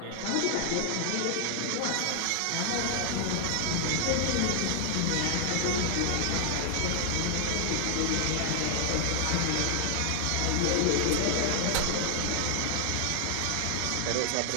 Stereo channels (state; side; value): different; both; correlation 0.00